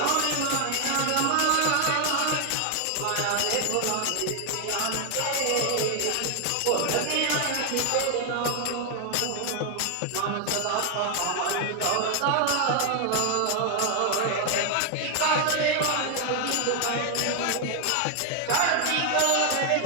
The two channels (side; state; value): both; different; correlation 0.00